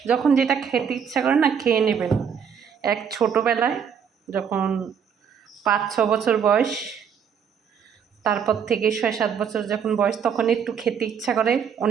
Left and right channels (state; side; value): quieter; left; 7.3 dB